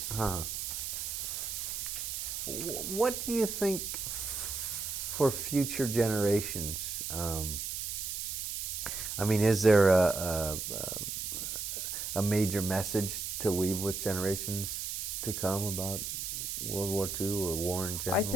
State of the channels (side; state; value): right; noise; hiss, 4 dB below the sound